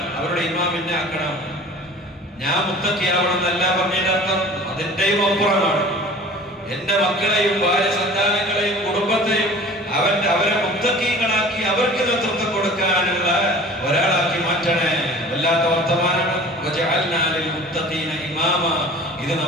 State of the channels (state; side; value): normal; both; correlation 0.44